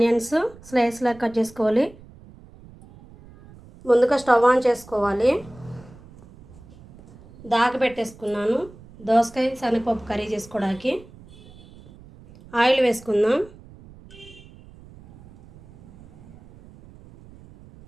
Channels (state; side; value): noise; right; rumble, 22 dB below the sound